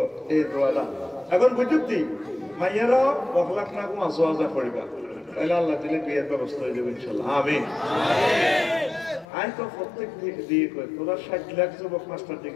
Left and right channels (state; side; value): drops out; right; at 9.2 s